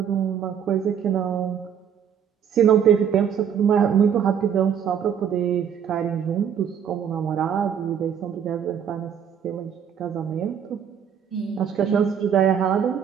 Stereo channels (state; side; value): quieter; left; 8.3 dB